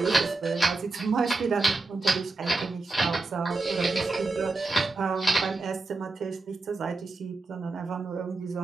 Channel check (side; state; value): left; quieter; 3.5 dB